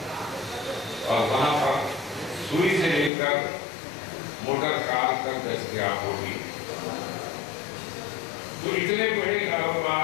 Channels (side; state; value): right; drops out; at 3.1 s